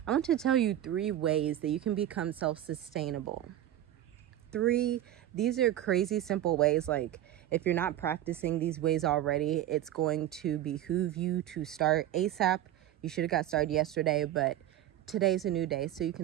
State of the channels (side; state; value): left; quieter; 12.5 dB